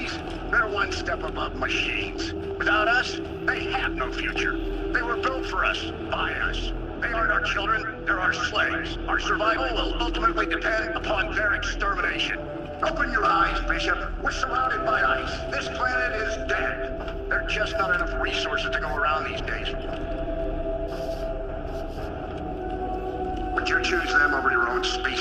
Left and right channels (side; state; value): both; identical; correlation 1.00